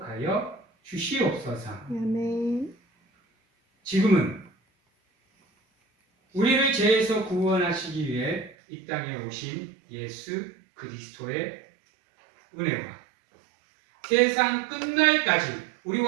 주시옵소서. 지금은 우리를 죄에서 구원하시기 위해 이 땅에 오신 예수 그리스도의 은혜와 세상 끝날까지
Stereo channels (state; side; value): drops out; left; at 8.6 s